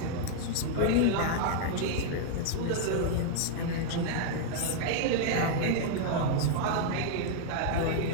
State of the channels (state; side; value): different; both; correlation -0.01